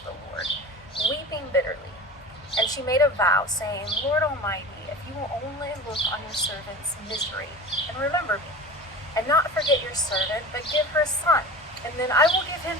the Lord, weeping bitterly. And she made a vow, saying, Lord Almighty, if you will only look on your servant's misery and remember me, and not forget your servant, but give her a son, and then I will give him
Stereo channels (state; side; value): normal; both; correlation 0.34